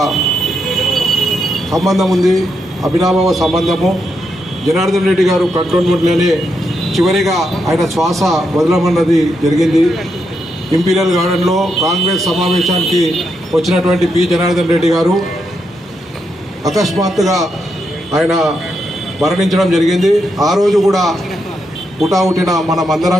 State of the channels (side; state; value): both; normal; correlation 0.81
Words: సంబంధం ఉంది, అభినాభావ సంబంధము. జనార్దన్ రెడ్డి గారు కంటోన్మెంట్లోనే చివరిగా ఆయన శ్వాస వదలమన్నది జరిగింది. ఇంపీరియల్ గార్డెన్లో కాంగ్రెస్ సమావేశానికి వచ్చినటువంటి పి జనార్దన్ రెడ్డి గారు అకస్మాత్తుగా ఆయన మరణించడం జరిగింది. ఆ రోజు కూడా పుటావుటిన మనమందరం